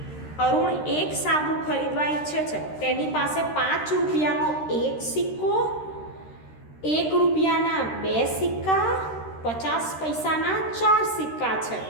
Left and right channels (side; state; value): right; late; 13 ms